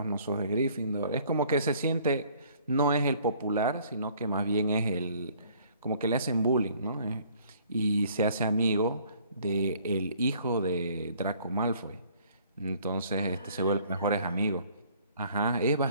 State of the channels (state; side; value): inverted; both; correlation -0.58